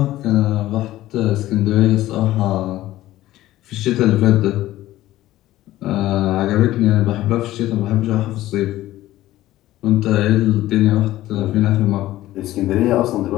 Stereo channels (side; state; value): right; quieter; 15.3 dB